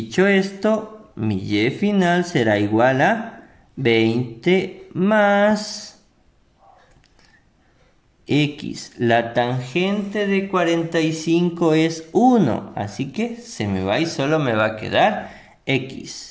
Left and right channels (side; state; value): both; identical; correlation 1.00